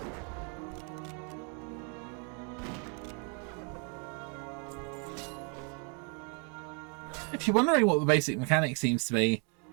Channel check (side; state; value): left; quieter; 37.2 dB